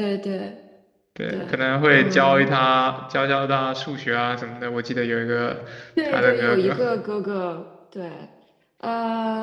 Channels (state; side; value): identical; both; correlation 1.00